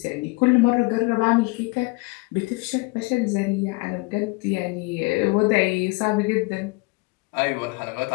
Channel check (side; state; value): right; quieter; 26.8 dB